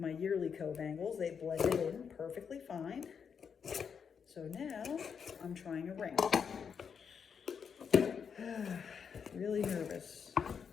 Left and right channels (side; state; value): right; quieter; 6.7 dB